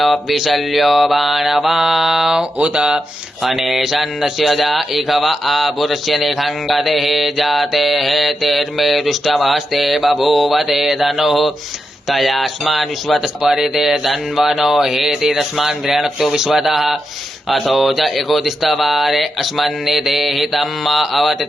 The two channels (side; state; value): both; normal; correlation 0.87